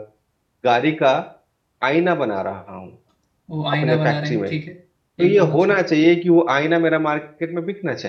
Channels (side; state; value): both; identical; correlation 1.00